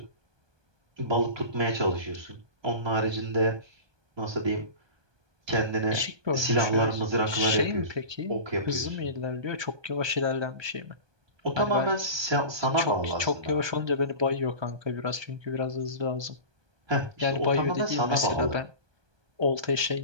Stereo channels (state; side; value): late; left; 1.2 ms